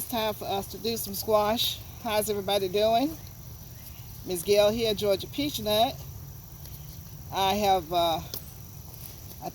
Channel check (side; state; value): both; identical; correlation 1.00